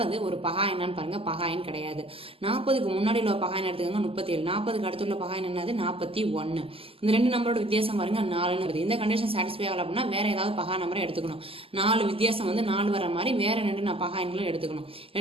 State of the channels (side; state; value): left; late; 0.27 ms